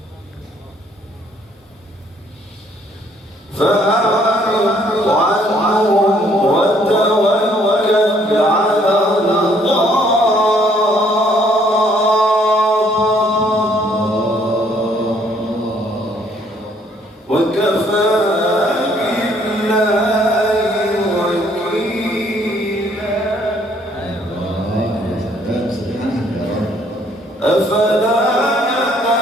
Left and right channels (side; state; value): both; normal; correlation 0.64